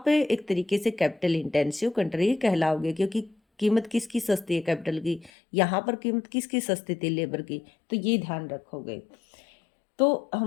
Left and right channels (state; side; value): drops out; right; at 5.3 s